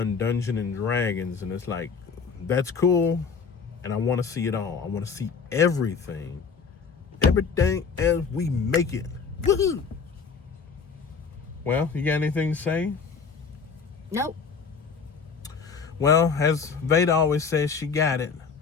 Dungeons and Dragons. And it's like, that's cool, and I want to see it all. I want to see everything as we make it. Woohoo! Well, you got anything to say? Nope. Well, as Vada always says, she got it.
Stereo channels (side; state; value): right; quieter; 5.6 dB